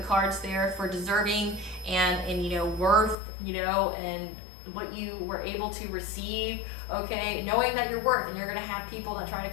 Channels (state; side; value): drops out; right; at 3.2 s